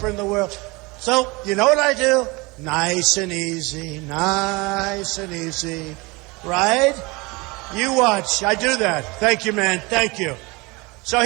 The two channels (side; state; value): left; quieter; 25.3 dB